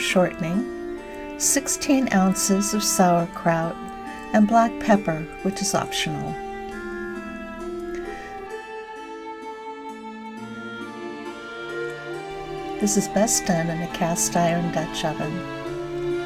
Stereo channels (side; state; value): both; identical; correlation 1.00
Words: 16 ounces of sauerkraut, and black pepper, which is optional. This is best done in a cast iron Dutch oven.